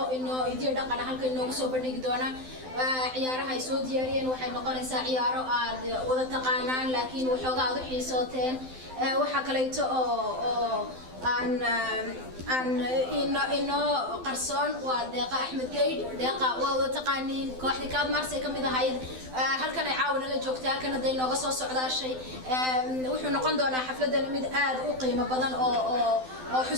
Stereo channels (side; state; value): left; late; 12 ms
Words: إنه يدير دقنا هلك إنه وصو بنيك دونا عيارها يسود ديارين وحي نقول إنسا عيارو وذا تقانان لكن وحوضا ضحي صوتين وحكليتو عن إنه قرصون ودقة أحمد قيد دقة وذا تقانين كواحد كاد مارسي كم إذا هاي هل كان يعاون اللي جوكتها كان دينا قصص على شيء وحنا نقول دونا حفلة مد آد وقيمة بدن أو